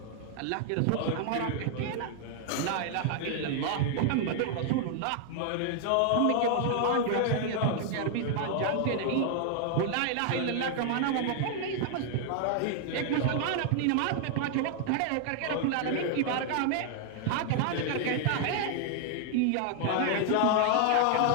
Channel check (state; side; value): different; both; correlation 0.00